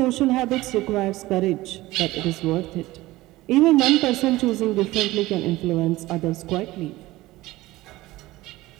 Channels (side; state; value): left; quieter; 18.2 dB